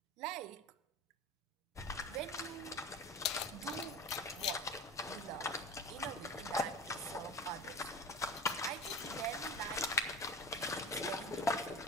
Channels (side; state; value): both; normal; correlation 0.33